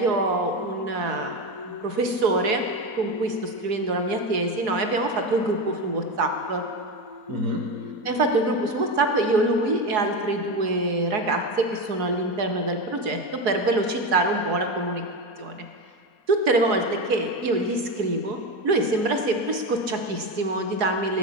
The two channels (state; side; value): late; left; 4.7 ms